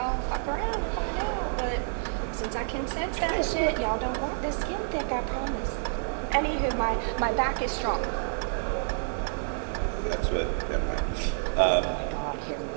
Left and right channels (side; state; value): left; silent; 59 dB below the other